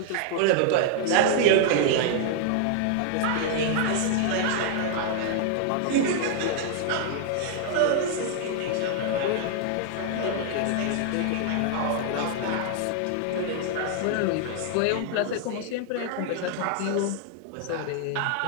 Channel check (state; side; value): different; both; correlation -0.01